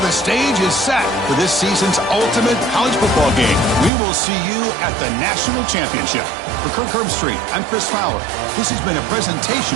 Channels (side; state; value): left; drops out; at 3.9 s